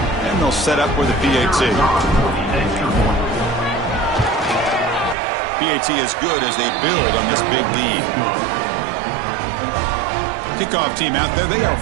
And they'll set up with a PAT. PAT is good as they build on this big lead. Kickoff team out there, they are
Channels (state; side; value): drops out; left; at 5.2 s